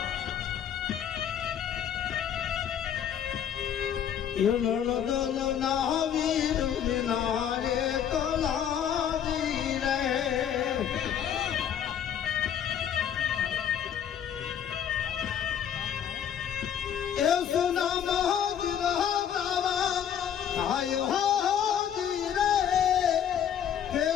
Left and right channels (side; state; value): right; quieter; 9.1 dB